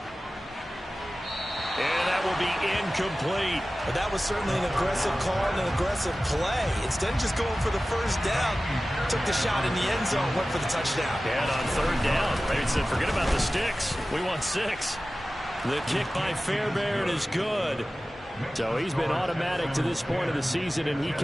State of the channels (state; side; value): normal; both; correlation 0.96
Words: And that will be incomplete. But that was certainly an aggressive call and an aggressive play. Instead of just going for the first down, took the shot in the end zone, went for the touchdown. And on 3rd down, they said, forget about the sticks. We want 6. The kick by Fairbairn is good. So he's been automatic to this point of the season, and he